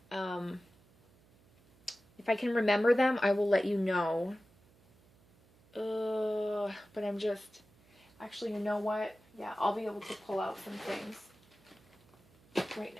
If I can remember them, I will let you know. But I'm just... Actually, you know what? Yeah, I'll be able to pull out some things right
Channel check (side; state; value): right; noise; hum, 30 dB below the sound